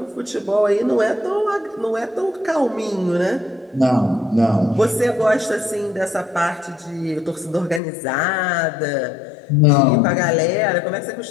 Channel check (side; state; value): right; drops out; at 7.8 s